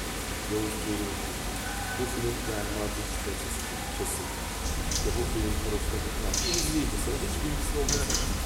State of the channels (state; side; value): identical; both; correlation 1.00